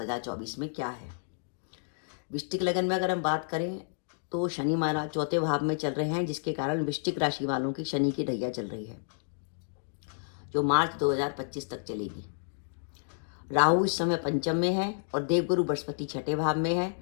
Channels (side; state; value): right; silent; digital silence